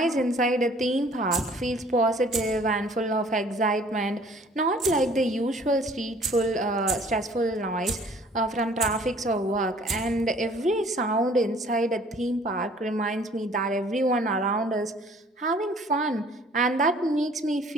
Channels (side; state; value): both; normal; correlation 0.54